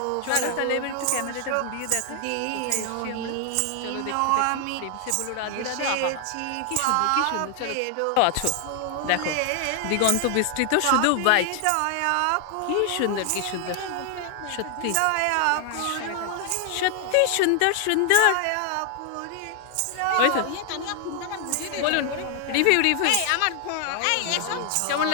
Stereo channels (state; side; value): different; both; correlation 0.00